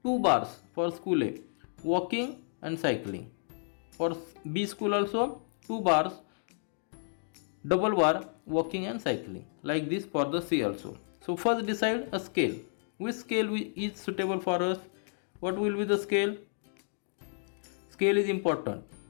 2 bars for school A, walking and cycling. For B school also 2 bars, double bar, walking and cycling, like this for the C also. So first decide a scale. Which scale is suitable for us? What will be the scale? Scale is important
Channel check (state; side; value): silent; right; digital silence